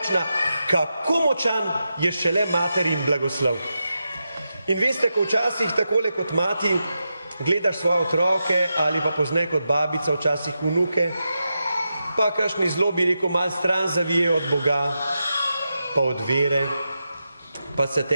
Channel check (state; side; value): inverted; both; correlation -0.88